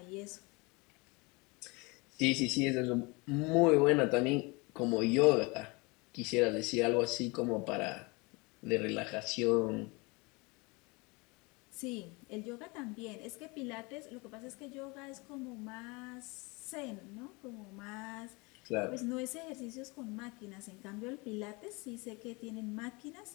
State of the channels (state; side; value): quieter; right; 27.2 dB